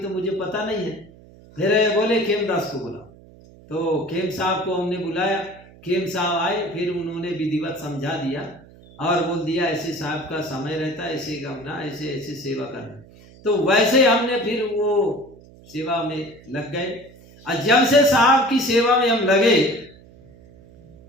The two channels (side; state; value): right; noise; hum, 23 dB below the sound